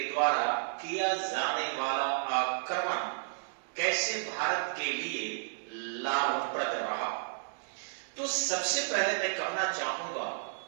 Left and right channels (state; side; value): silent; left; digital silence